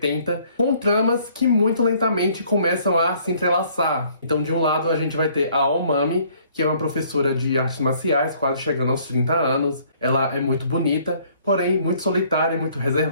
com tramas que muito lentamente começam a se entrelaçar. Então de um lado a gente vai ter a Aomami, que é uma professora de artes marciais, quase chegando aos 30 anos. Ela é muito bonita, porém muito solitária e muito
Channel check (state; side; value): inverted; both; correlation -0.61